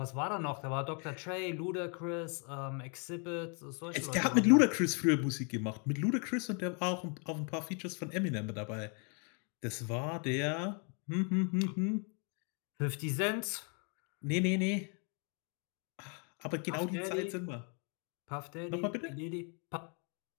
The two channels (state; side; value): quieter; right; 37.9 dB